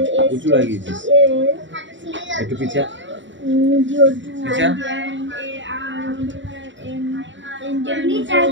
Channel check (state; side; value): late; left; 0.54 ms